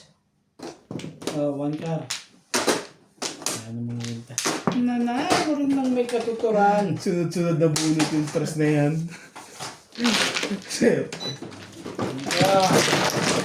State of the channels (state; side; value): identical; both; correlation 1.00